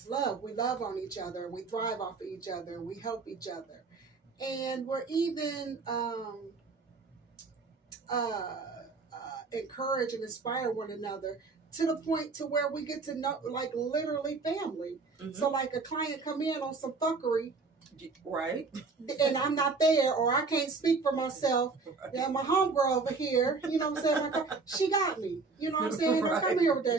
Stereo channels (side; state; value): left; quieter; 4.3 dB